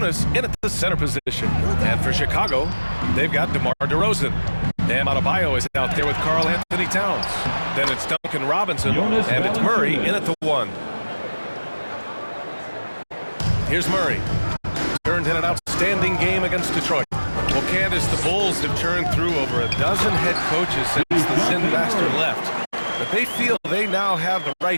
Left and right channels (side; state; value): both; inverted; correlation -1.00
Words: in at the center position. And for Chicago, they've got DeMar DeRozan. Bam Adebayo is out there with Karl Anthony Towns. Then it's Duncan Robinson, and it's Murray in at the 1. Here's Murray. Turned in an outstanding game against Detroit. Well, Candace, the Bulls have churned through over a dozen head coaches since the Sin Master left. But they feel they now have the